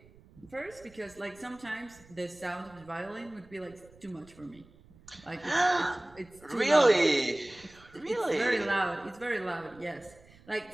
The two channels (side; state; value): right; noise; rumble, 25 dB below the sound